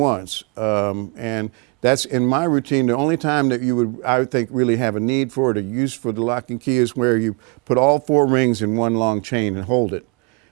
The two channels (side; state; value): left; quieter; 31.1 dB